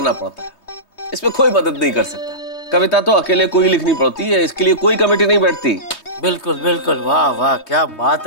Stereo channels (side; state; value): right; late; 3.2 ms